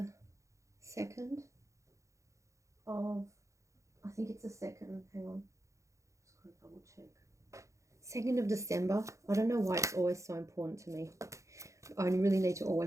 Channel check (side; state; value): left; late; 0.15 ms